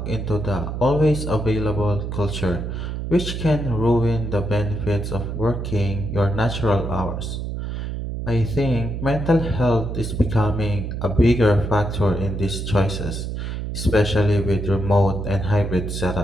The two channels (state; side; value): noise; right; hum, 4 dB below the sound